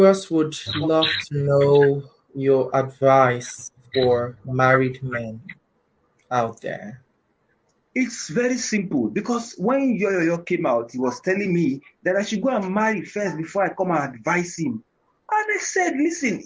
would love to know your advice for married men out there. It's very simple, because when Yoyo came out, he was telling me that I should go and marry first before I come and advise him. And I said, listen,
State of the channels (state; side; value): identical; both; correlation 1.00